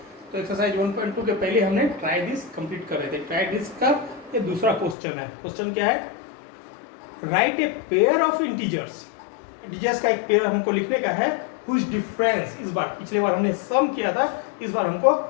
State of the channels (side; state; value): right; drops out; at 5.0 s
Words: तो एक्सरसाइज 1.2 के पहले हमने ट्राई दिस कंप्लीट कर रहे थे। ट्राई दिस का ये दूसरा क्वेश्चन है। क्वेश्चन क्या है? Right a pair of integers. Integers का एक पेयर हमको लिखने का है। हुज डिफरेंस, इस बार पिछले बार हमने सम किया था, इस बार